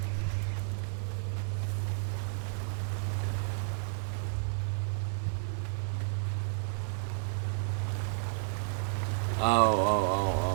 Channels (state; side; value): silent; left; digital silence